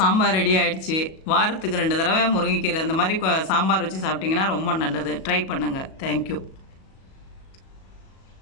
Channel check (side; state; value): right; late; 37 ms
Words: ரெடி ஆகிடுச்சு. வாரத்துக்கு 2 தடவை முருங்கைக்கீரை இந்த மாதிரி சாம்பார் வச்சு சாப்பிட்டிங்கன்னா ரொம்ப நல்லது. ட்ரை பண்ணுங்கள். Thank you.